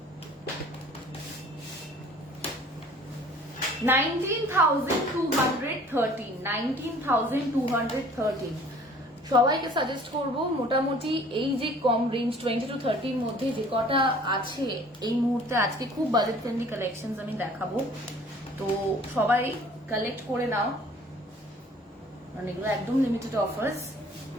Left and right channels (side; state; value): both; normal; correlation 0.52